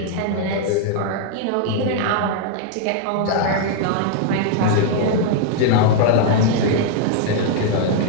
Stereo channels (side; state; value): both; different; correlation 0.00